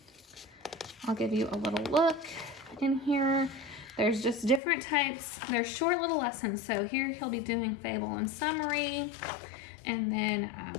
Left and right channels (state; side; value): drops out; right; at 4.6 s